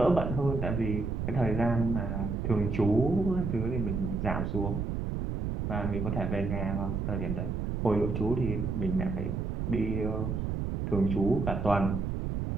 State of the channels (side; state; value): right; noise; rumble, 2 dB below the sound